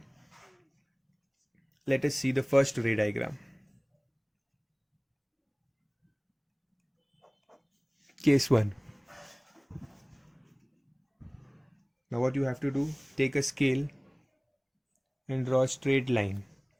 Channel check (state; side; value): identical; both; correlation 1.00